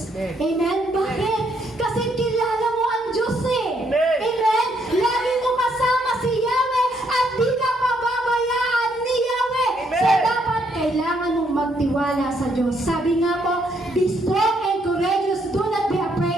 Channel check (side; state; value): both; normal; correlation 0.72